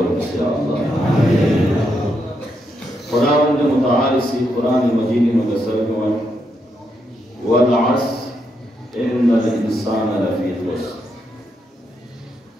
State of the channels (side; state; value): both; normal; correlation 0.80